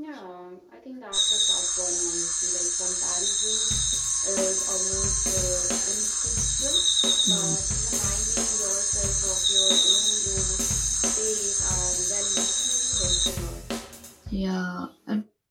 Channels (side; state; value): both; identical; correlation 1.00